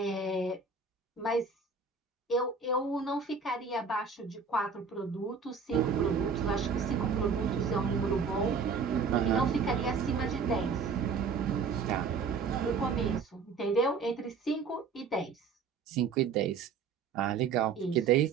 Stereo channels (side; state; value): left; quieter; 5.2 dB